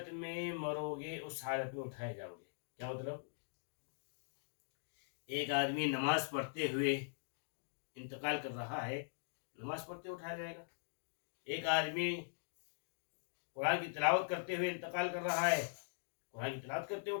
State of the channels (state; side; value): silent; right; digital silence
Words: میں مرو گے اس حالت میں اٹھائے جاؤ گے. کیا مطلب؟ ایک آدمی نماز پڑھتے ہوئے انتقال کر رہا ہے، نماز پڑھتے اٹھایا جائے گا. ایک آدمی قرآن کی تلاوت کرتے ہوئے انتقال کر رہا ہے، قرآن کی تلاوت کرتے